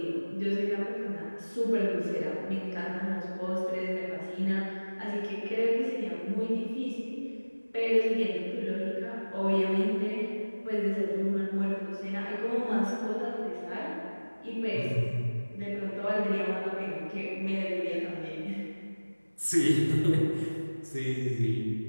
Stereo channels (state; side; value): inverted; both; correlation -1.00